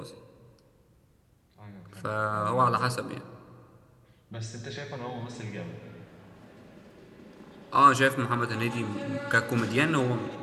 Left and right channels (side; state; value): both; identical; correlation 1.00